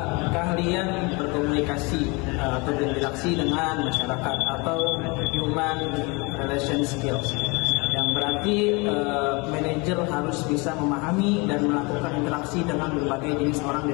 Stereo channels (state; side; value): quieter; right; 27.9 dB